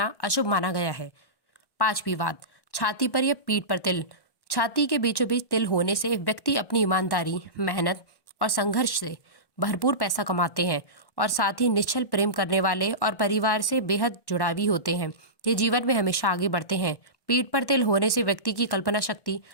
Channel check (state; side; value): late; right; 1.1 ms